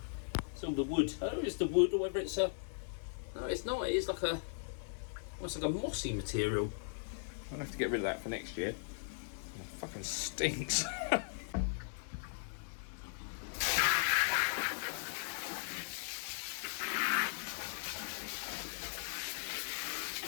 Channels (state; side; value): silent; right; digital silence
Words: the wood. I don't know if it's the wood or whether it's a... No, it's not. It is like a... almost like a mossy material. I'll have to get rid of that for next year. It fucking stinks.